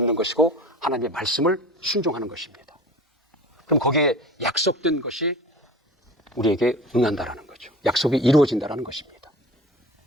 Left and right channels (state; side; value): normal; both; correlation 0.40